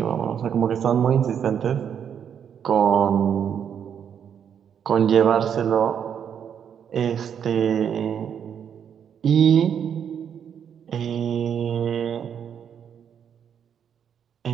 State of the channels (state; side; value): quieter; left; 8.2 dB